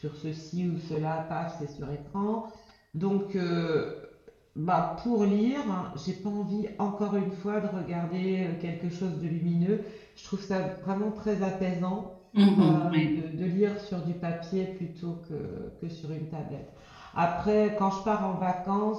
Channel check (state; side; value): identical; both; correlation 1.00